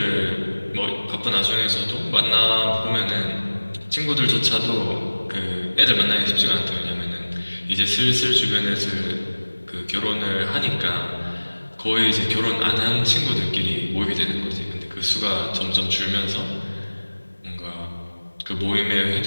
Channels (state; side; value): inverted; both; correlation -1.00